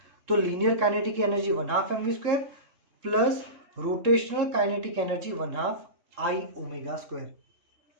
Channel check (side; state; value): left; late; 3.7 ms